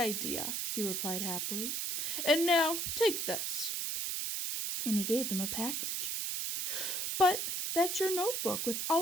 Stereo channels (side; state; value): right; noise; hiss, 1 dB below the sound